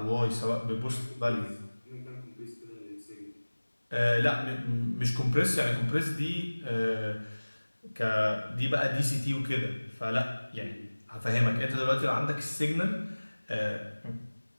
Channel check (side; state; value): both; inverted; correlation -1.00